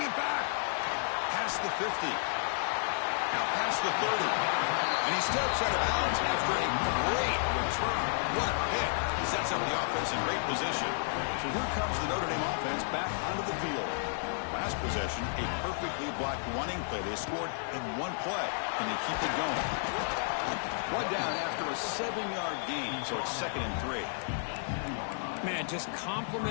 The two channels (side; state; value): right; silent; 56 dB below the other